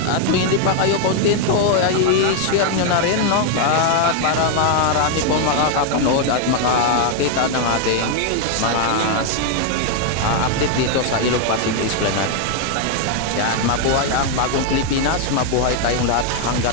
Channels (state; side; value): different; both; correlation 0.00